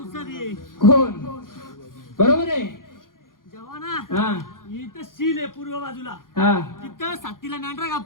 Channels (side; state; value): right; late; 0.90 ms